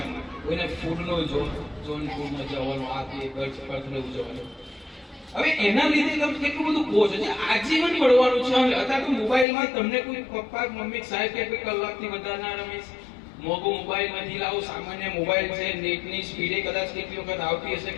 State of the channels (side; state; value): right; drops out; at 9.5 s